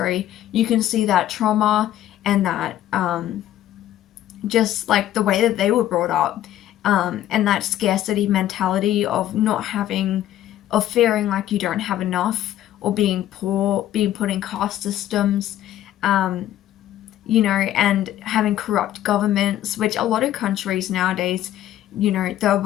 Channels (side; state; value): right; quieter; 12.7 dB